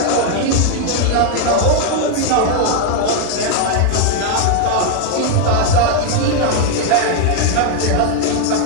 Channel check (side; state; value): both; different; correlation 0.00